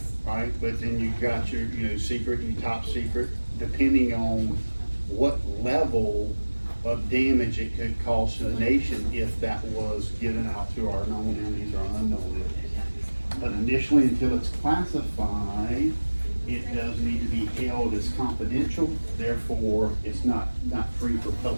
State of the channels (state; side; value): inverted; both; correlation -1.00